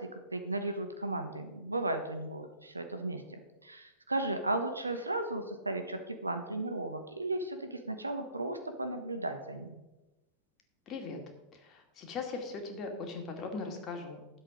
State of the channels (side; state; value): both; inverted; correlation -0.55